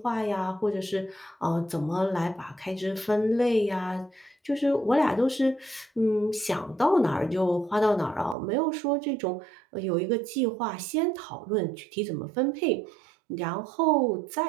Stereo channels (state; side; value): drops out; left; at 8.3 s